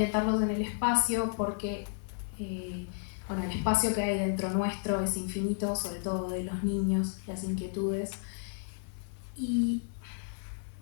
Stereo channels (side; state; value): right; silent; digital silence